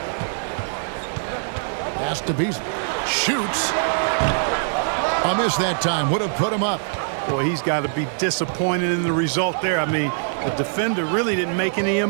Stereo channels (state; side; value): silent; left; 60 dB below the other